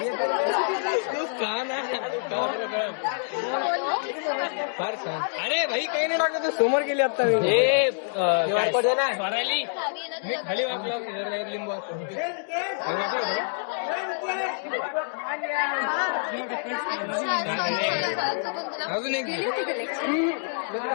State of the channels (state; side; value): silent; right; digital silence